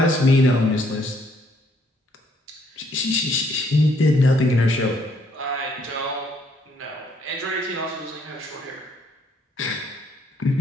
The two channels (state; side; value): normal; both; correlation 0.68